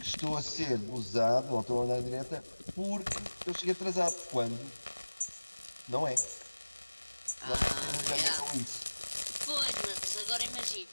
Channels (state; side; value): inverted; both; correlation -1.00